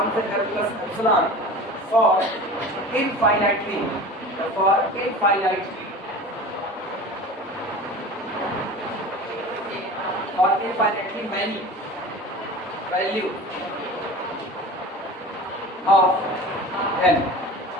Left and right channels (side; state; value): both; normal; correlation 0.35